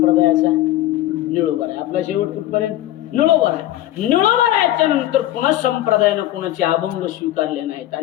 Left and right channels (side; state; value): right; quieter; 14.3 dB